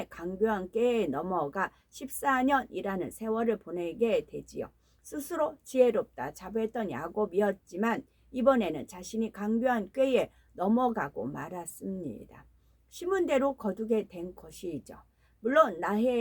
강교한 꾀에 넘어가 14년이라는 세월을 보내게 되지요. 스스로 지혜롭다 자부했던 야곱이었지만 이번에는 자신이 강교한 꾀에 넘어가고 말았습니다. 심은 대로 거두게 된 것이죠. 물론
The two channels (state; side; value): identical; both; correlation 1.00